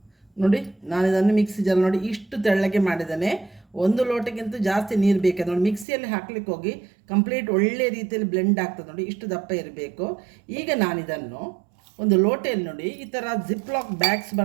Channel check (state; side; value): drops out; left; at 5.9 s